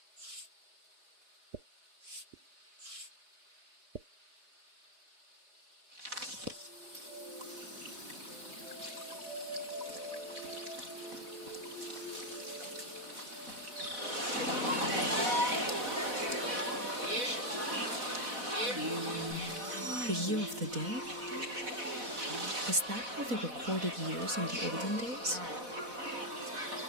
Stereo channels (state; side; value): late; left; 4.1 ms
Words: The year of the dead? Is that how they recorded years in the olden days?